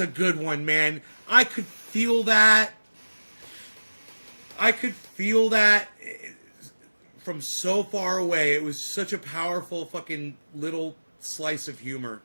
good one, man. I could feel that. From so far away. It was such a powerful fucking little slice of humor.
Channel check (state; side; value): inverted; both; correlation -1.00